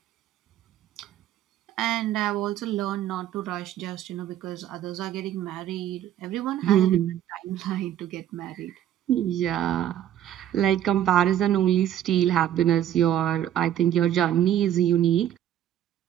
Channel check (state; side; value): quieter; left; 11.2 dB